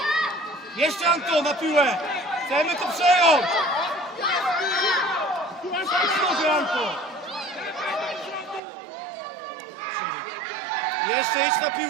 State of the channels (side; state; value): left; drops out; at 8.6 s